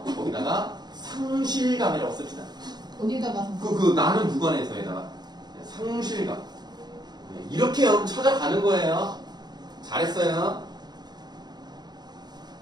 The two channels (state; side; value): late; left; 0.20 ms